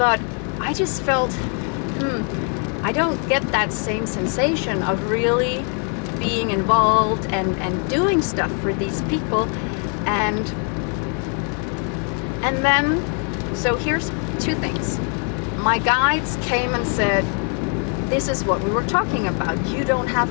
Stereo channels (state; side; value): quieter; right; 39.7 dB